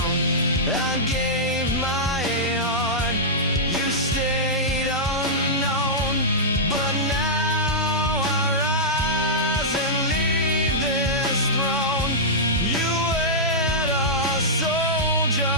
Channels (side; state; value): both; normal; correlation -0.12